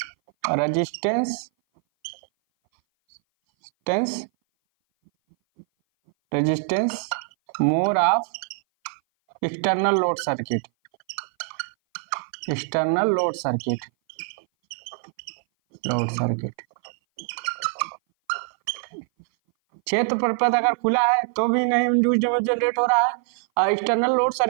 resistance tense resistance more of external load circuit, external load circuit, load circuit. क्षेत्र परिपथ अगर खुला है तो भी नहीं इंड्यूस्ड ईएमएफ जनरेट हो रहा है, और एक्सटर्नल लोड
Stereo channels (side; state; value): left; silent; 58 dB below the other